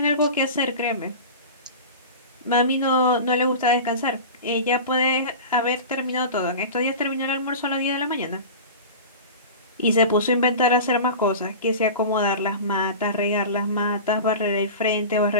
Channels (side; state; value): both; inverted; correlation -0.32